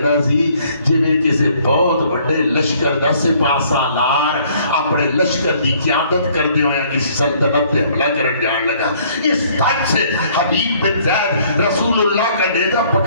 سی جویں کسی بہت بڑے لشکر دا سپاہ سالار اپنے لشکر دی قیادت کردے ہوئے کسی سلطنت تے حملہ کرن جان لگا. اس تک سے حبیب بن زید رسول اللہ کا نیزہ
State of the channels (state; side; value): inverted; both; correlation -0.61